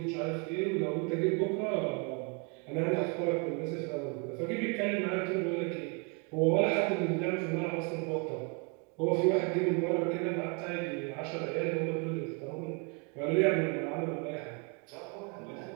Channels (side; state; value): left; quieter; 34.0 dB